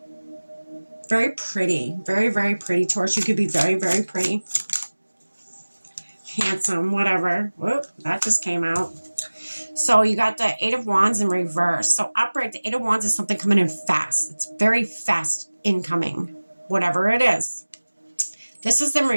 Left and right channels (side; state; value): both; inverted; correlation -1.00